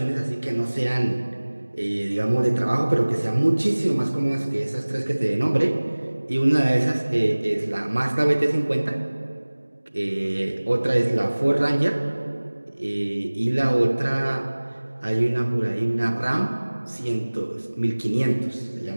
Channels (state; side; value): inverted; both; correlation -1.00